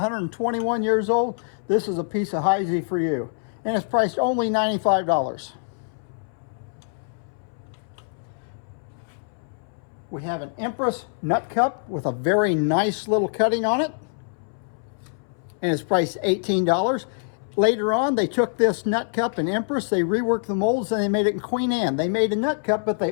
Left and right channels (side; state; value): right; silent; 62 dB below the other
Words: years old, this is a piece of Heisey for you. And it's priced only $95. We have an Empress Nut Cup with a very nice little cutting on it, and it's priced $18. Later on, they took this nut cup in Empress, they reworked the molds, and they made it in Queen Anne. They made a nut cup, but they